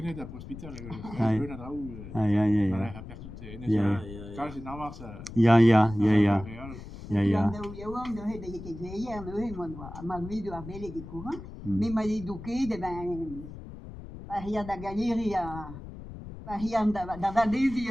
d'un hospital. Aia. Personne, c'est Navarre, ça. Ja. Ja, de he de ke gleier no he mon wa ma video a bele ke courant mais ma eduqué de ben paria da galeria paria da vadesi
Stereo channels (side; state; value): left; noise; rumble, 13 dB below the sound